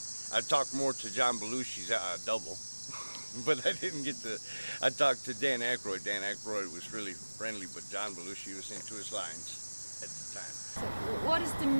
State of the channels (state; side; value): inverted; both; correlation -1.00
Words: I talked more to John Belushi's double, but I didn't get to. I talked to Dan Aykroyd. Dan Aykroyd was really friendly, but John Belushi was into his lines at the time. So what is the